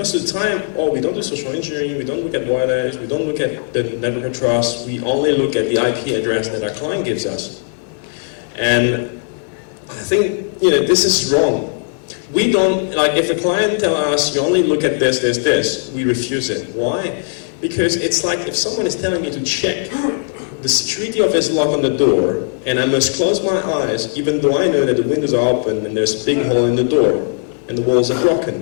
of the time, oh, we don't do social engineering, we don't look at wireless, we don't look at the network of trust, we only look at the IP address that our client gives us. And I think, this is wrong. We don't, like, if a client tells us, you only look at this, we refuse it. Why? Because it's like if someone is telling me to check the security of his lock on the door, and I must close my eyes, even though I know that the windows are open and there's a big hole in the door, and the walls are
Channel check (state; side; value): silent; right; 64 dB below the other